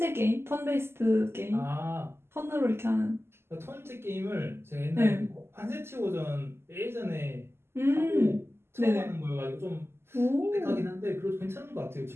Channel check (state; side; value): late; left; 0.12 ms